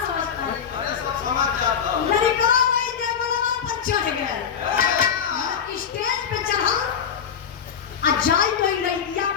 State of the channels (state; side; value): quieter; right; 7.6 dB